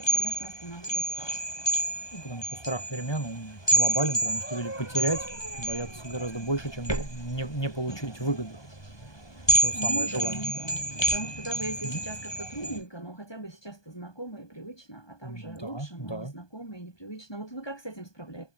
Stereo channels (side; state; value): right; late; 1.2 ms